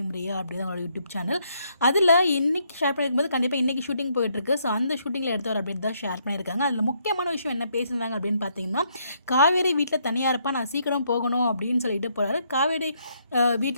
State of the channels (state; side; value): inverted; both; correlation -0.73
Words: ரியா அப்படின்னு அவங்களோட யூடியூப் சேனல். அதில் இன்றைக்கி ஷேர் பண்ணியிருக்கும்போது கண்டிப்பாக இன்றைக்கி ஷூட்டிங் போயிட்டுருக்கு. ஸோ அந்த ஷூட்டிங்கில் எடுத்த ஒரு அப்டேட் தான் ஷேர் பண்ணியிருக்காங்க. அதில் முக்கியமான விஷயம் என்ன பேசியிருந்தாங்க அப்படின்னு பார்த்தீங்கன்னா, காவேரி வீட்டில் தனியாக இருப்பா, நான் சீக்கிரம் போகணும் அப்படின்னு சொல்லிட்டு போகிறாரு. காவேரி